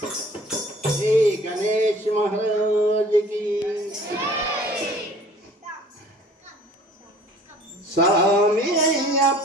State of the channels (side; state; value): both; normal; correlation 0.50